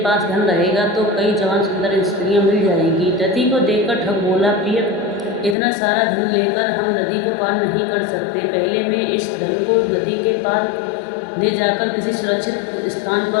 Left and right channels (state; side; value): drops out; right; at 5.6 s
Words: धन रहेगा तो कई जवान सुंदर स्त्रियां मिल जाएंगी। नदी को देखकर ठग बोला, प्रिय, इतना सारा धन लेकर हम नदी को पार नहीं कर सकते। पहले मैं इस धन को नदी के पार ले जाकर किसी सुरक्षित स्थान